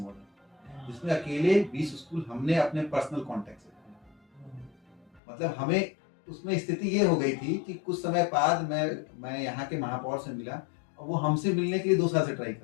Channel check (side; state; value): right; drops out; at 5.2 s